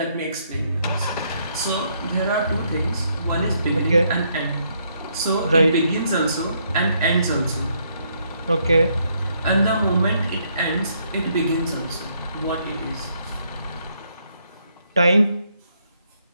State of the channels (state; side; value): inverted; both; correlation -0.73